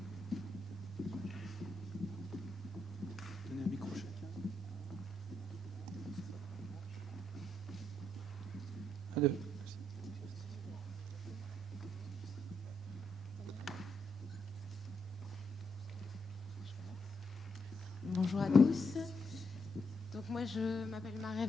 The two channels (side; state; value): both; normal; correlation 0.79